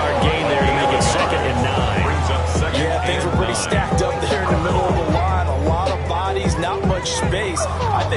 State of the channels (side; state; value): both; identical; correlation 1.00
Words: gain there to make it 2nd and 9. Brings up second. Yeah, things were pretty stacked up there in the middle of the line. A lot of bodies, not much space. I